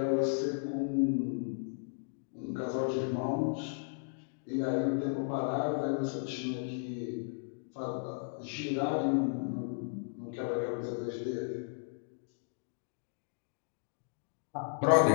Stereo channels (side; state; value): right; silent; digital silence